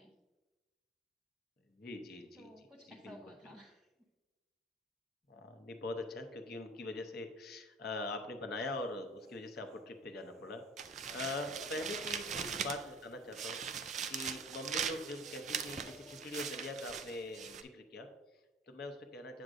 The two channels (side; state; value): both; normal; correlation 0.43